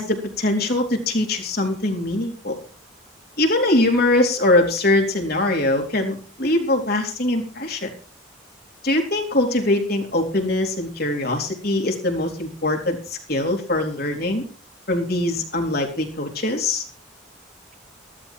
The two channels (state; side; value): normal; both; correlation 0.29